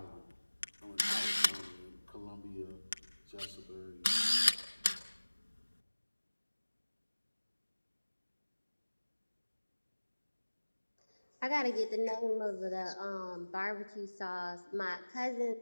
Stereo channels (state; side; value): inverted; both; correlation -1.00